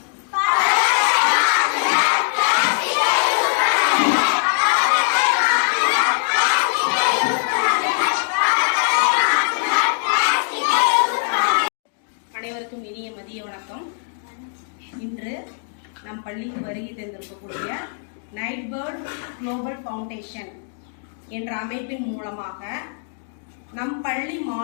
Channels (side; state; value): right; silent; digital silence